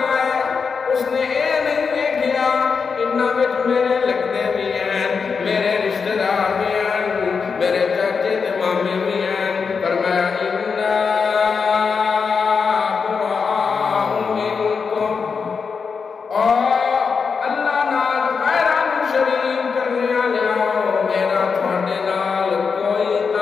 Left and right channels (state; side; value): quieter; right; 5.5 dB